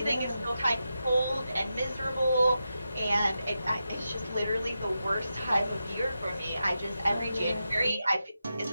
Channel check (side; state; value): both; inverted; correlation -0.89